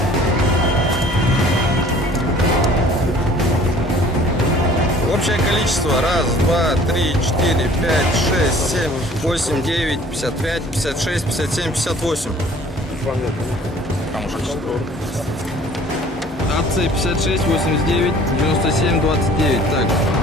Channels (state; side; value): normal; both; correlation 0.51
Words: Общее количество 1, 2, 3, 4, 5, 6, 7, 8, 9, 55, 56, 57, 58. АЦ 56, 89, 97, 29. Так.